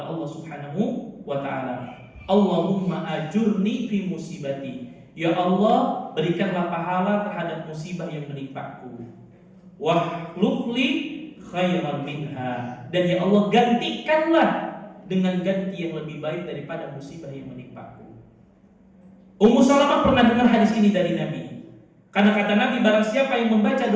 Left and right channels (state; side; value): identical; both; correlation 1.00